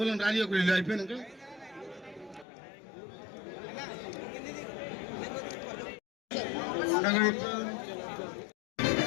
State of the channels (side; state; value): right; drops out; at 2.5 s